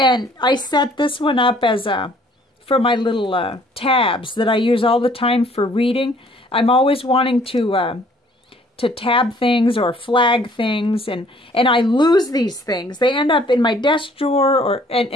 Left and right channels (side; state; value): both; normal; correlation 0.59